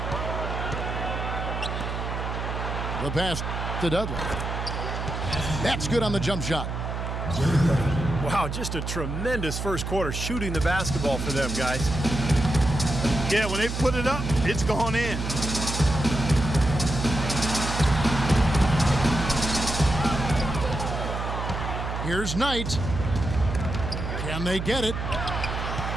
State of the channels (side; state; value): right; noise; hum, 4 dB below the sound